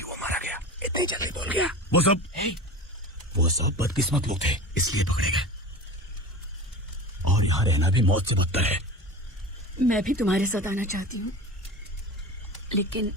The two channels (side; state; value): both; normal; correlation 0.33